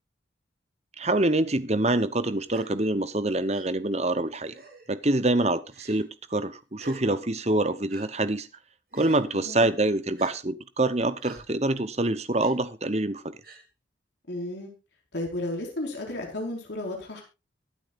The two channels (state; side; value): normal; both; correlation 0.43